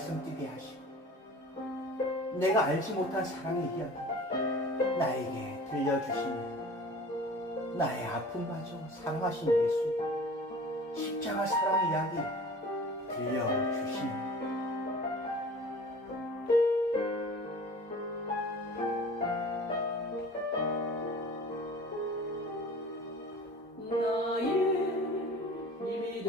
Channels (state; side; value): normal; both; correlation 0.42